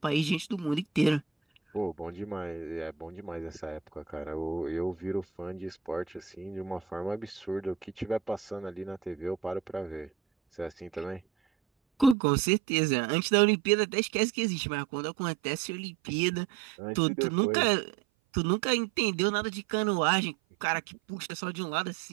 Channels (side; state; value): left; drops out; at 12.2 s